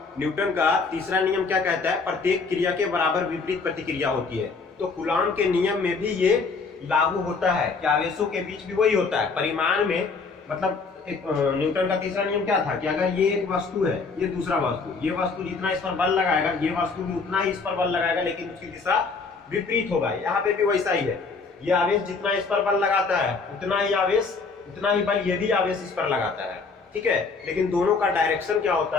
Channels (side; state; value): right; quieter; 4.5 dB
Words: न्यूटन का तीसरा नियम क्या कहता है, प्रत्येक क्रिया के बराबर विपरीत प्रतिक्रिया होती है। तो कूलॉम के नियम में भी ये लागू होता है कि आवेशों के बीच भी वही होता है। परिमाण में मतलब न्यूटन का तीसरा नियम क्या था कि अगर ये एक वस्तु है, ये दूसरा वस्तु, ये वस्तु जितना इस पर बल लगाएगा, ये वस्तु भी उतना ही इस पर बल लगाएगा, लेकिन उसकी दिशा विपरीत होगा। यहाँ पे भी वैसा ही है, ये आवेश जितना इस पर बल लगाता है उतना ही आवेश, उतना ही बल ये भी आवेश इस पर लगाता है। ठीक है, लेकिन दोनों का डायरेक्शन क्या